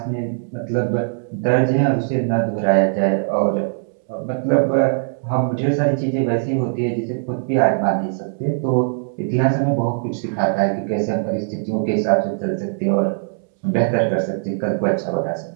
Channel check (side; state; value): left; silent; 65 dB below the other